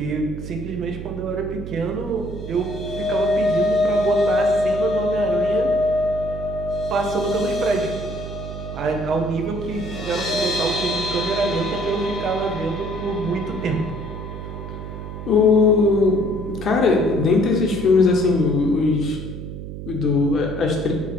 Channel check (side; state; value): right; noise; hum, 9 dB below the sound